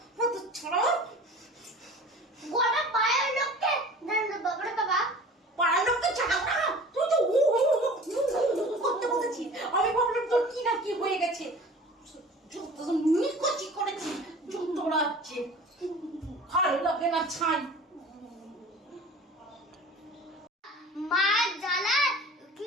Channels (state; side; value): normal; both; correlation 0.42